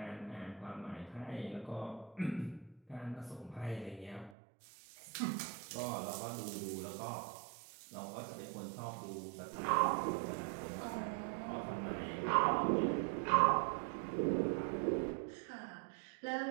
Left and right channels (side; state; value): left; drops out; at 4.4 s